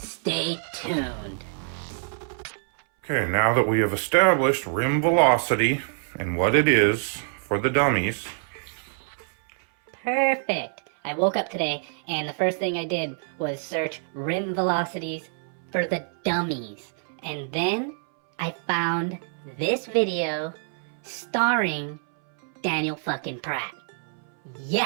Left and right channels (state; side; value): silent; left; 61 dB below the other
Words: tuned. Okay, now that we have established rim velocity and what it is for the dummies. Perfect. I woke up today and the first thing I did was search rim velocities for the dummies. And then I found this video starring Daniel fucking Pratt.